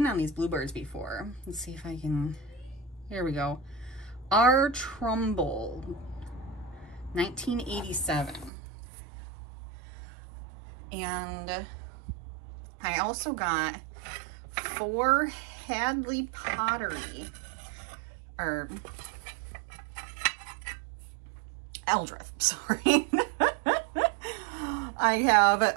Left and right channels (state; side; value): drops out; left; at 8.5 s